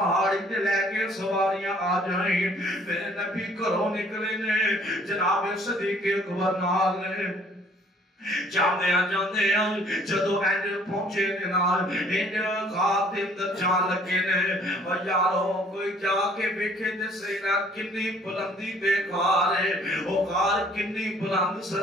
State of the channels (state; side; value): normal; both; correlation 0.58